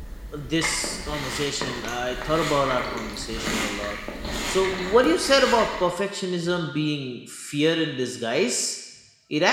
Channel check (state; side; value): identical; both; correlation 1.00